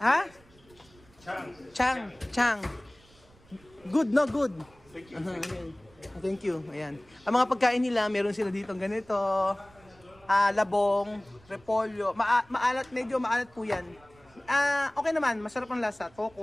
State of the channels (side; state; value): right; noise; rumble, 28 dB below the sound